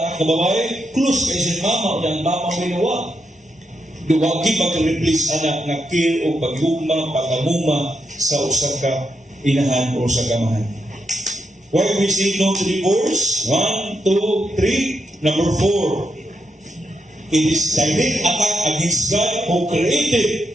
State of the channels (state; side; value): normal; both; correlation 0.82